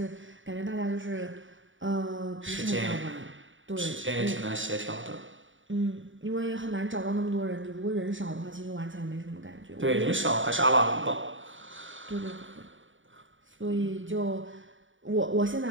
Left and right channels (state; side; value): late; left; 0.56 ms